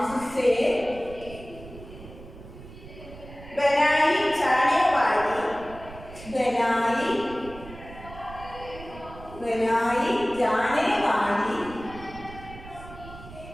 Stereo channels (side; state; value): right; noise; rumble, 16 dB below the sound